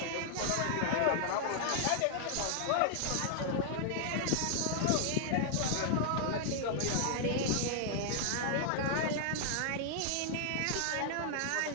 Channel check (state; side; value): different; both; correlation 0.00